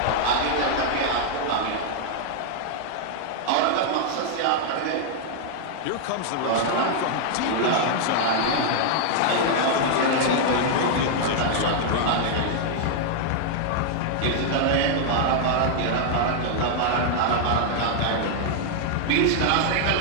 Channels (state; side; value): different; both; correlation -0.01